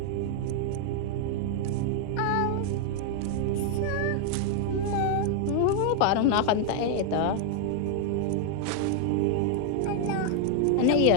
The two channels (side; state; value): both; different; correlation 0.00